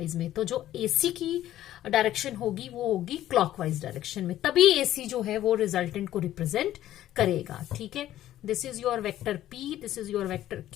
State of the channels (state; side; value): quieter; right; 13.2 dB